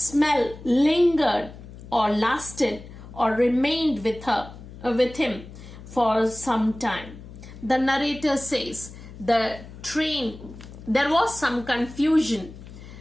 lingered or lasted or remained with him for some time. The narrator says the train, there was some confusion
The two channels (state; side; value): noise; left; hum, 16 dB below the sound